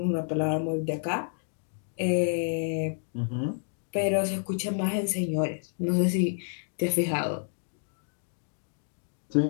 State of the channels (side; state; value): right; silent; digital silence